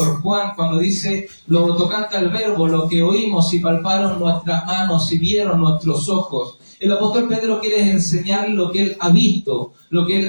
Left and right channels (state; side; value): inverted; both; correlation -1.00